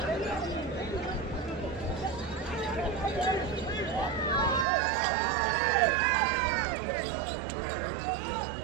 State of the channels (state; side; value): drops out; left; at 4.7 s